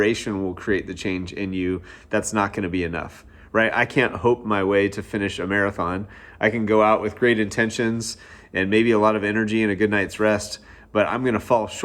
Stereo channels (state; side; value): identical; both; correlation 1.00